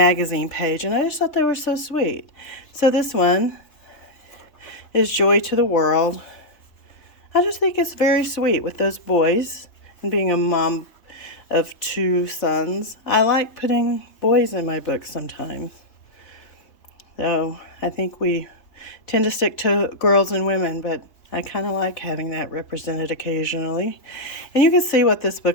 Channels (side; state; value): right; late; 3.3 ms